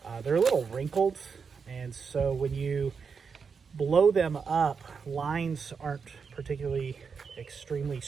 they're a little wrinkled, and so when you blow them up, lines aren't particularly extremely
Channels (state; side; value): quieter; left; 5.8 dB